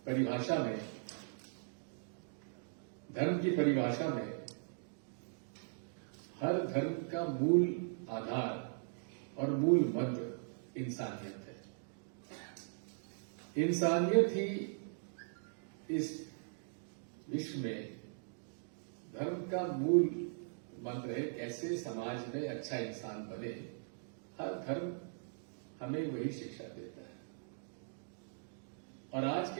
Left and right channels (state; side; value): silent; left; digital silence